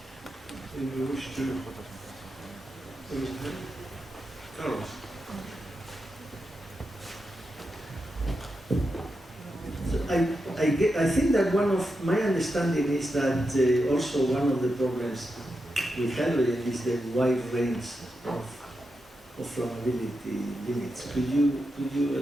Anyone wish to raise a hand? Carlos. So I think that one of my understanding is that also one of the problems with hydrogen is the wide range of flammability limits. Could you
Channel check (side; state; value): both; normal; correlation 0.88